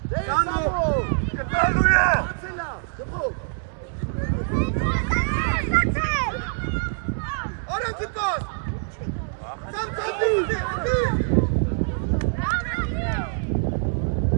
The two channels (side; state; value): left; silent; 62 dB below the other